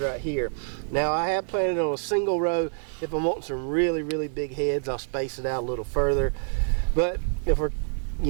right here. Now I have planted on a single row. If I'm wanting some really, really big heads, I'll space it out a little further. But if we're,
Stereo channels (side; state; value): left; silent; digital silence